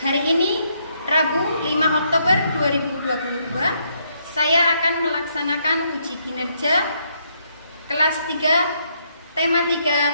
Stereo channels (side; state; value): both; inverted; correlation -0.74